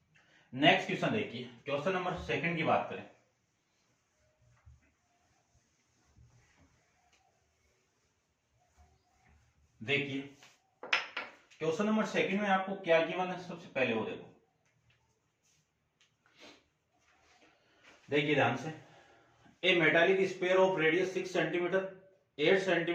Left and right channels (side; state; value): both; identical; correlation 1.00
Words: नेक्स्ट क्वेश्चन देखिए, क्वेश्चन नंबर 2 की बात करें। देखिए क्वेश्चन नंबर 2 में आपको क्या गिवन है, सबसे पहले वो देखो। देखिए ध्यान से, a metallic sphere of radius 6 centimeter, 8